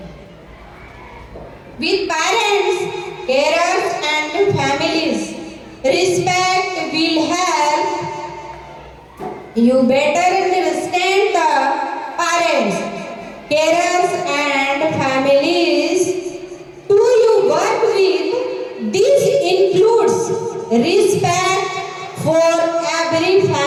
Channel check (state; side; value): identical; both; correlation 1.00